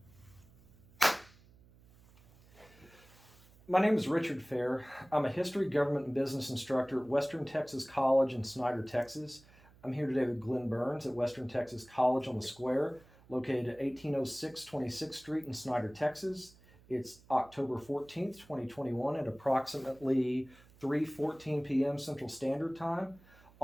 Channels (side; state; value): right; noise; hum, 26 dB below the sound